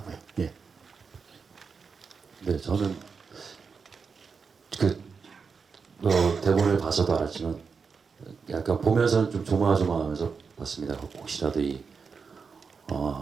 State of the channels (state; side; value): quieter; left; 5.4 dB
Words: 예. 네, 저는 그 대본을 봐서도 알았지만 약간 보면서는 좀 조마조마하면서 봤습니다. 혹시라도